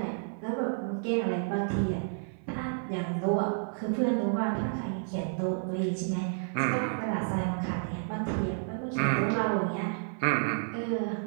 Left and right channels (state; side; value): silent; left; 57 dB below the other